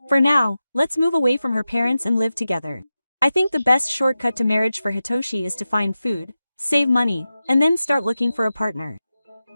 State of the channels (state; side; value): inverted; both; correlation -0.93